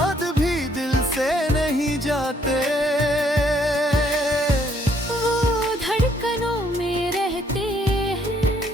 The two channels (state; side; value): normal; both; correlation 0.67